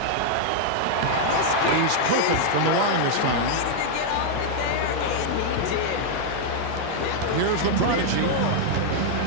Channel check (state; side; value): different; both; correlation -0.01